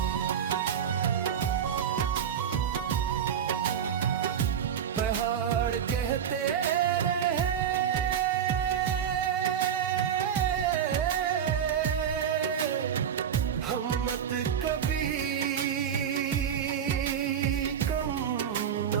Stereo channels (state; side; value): quieter; left; 8.4 dB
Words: पहाड़ कहते रहे हिम्मत कभी कम न